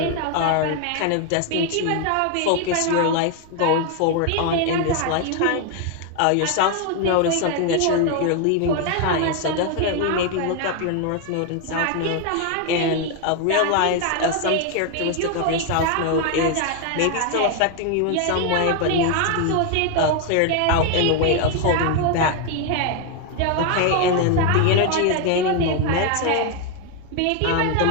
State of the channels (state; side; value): different; both; correlation 0.01